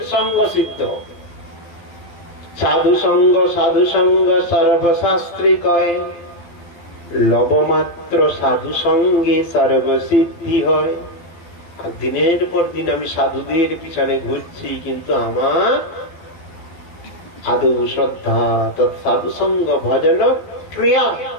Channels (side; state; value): right; late; 12 ms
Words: সঙ্গ সিদ্ধ। সাধু সঙ্গ সর্বশাস্ত্রী কয়, লবমাত্র সাধু সঙ্গে সর্বসিদ্ধি হয়। আর দিনের পর দিন আমি সাধুদের পিছনে ঘুরছি, কিন্তু আমার আদৌ শ্রদ্ধা সাধু সঙ্গ ভজন ক্রিয়া